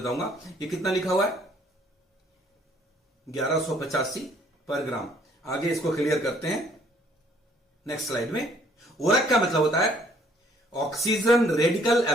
ये कितना लिखा हुआ है? 1185 पर ग्राम। आगे इसको क्लियर करते हैं नेक्स्ट स्लाइड में। ओरेक का मतलब होता है oxygen radical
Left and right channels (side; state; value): both; normal; correlation 0.62